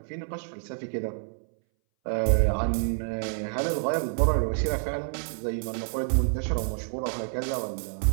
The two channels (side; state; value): left; silent; 59 dB below the other